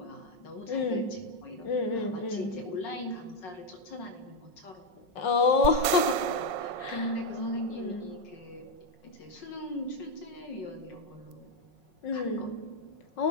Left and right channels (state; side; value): late; right; 5.5 ms